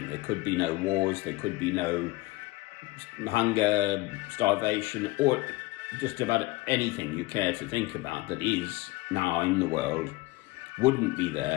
there could be no wars, there could be no hunger, starvation, or just about anything you care to think about that is now in the world wouldn't be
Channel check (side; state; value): right; quieter; 21.1 dB